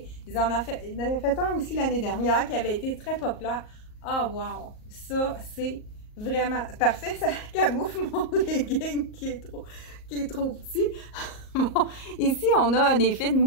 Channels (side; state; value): right; late; 38 ms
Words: Ils en avaient fait un aussi l'année dernière qui avait été très populaire. Ah, oh, wow! Ça, c'est vraiment parfait. Ça camoufle mon legging qui est trop petit. Bon, ici, on a un effet de